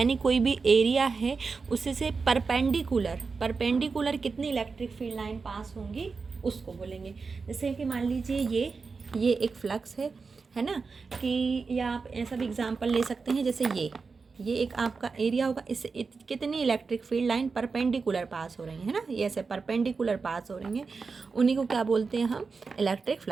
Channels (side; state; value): left; quieter; 4.7 dB